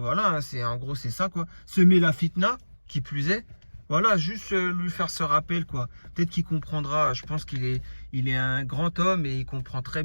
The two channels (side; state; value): both; inverted; correlation -1.00